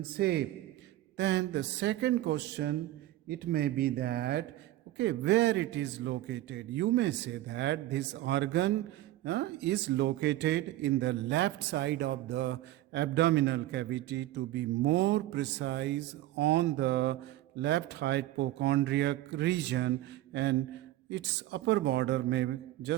shape. Then the second question, it may be that, okay, where it is located. You may say that this organ is located in the left side of the abdominal cavity, to be more precise on the left hypochondriac region, and its upper border may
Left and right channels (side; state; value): left; quieter; 15.4 dB